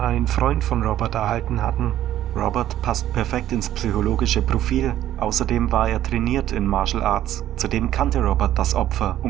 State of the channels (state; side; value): quieter; left; 12.5 dB